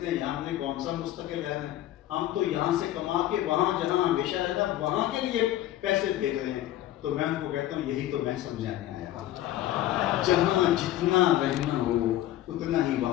ہیں یہاں ہم نے کون سا مستقل رہنا ہے؟ ہم تو یہاں سے کما کے وہاں جہاں ہمیشہ رہنا وہاں کے لیے پیسے بھیج رہے ہیں۔ تو میں ان کو کہتا ہوں یہی تو میں سمجھانے آیا ہوں، جہاں جتنا رہنا ہو اتنا ہی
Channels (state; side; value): quieter; right; 13.6 dB